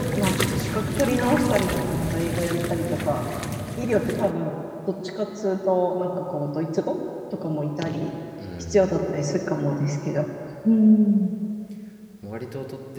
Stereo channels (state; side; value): identical; both; correlation 1.00